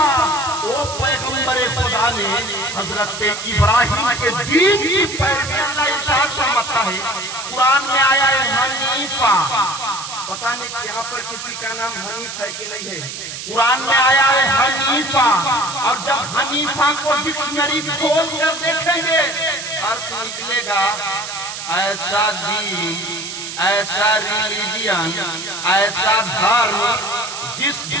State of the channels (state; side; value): noise; right; hiss, 8 dB below the sound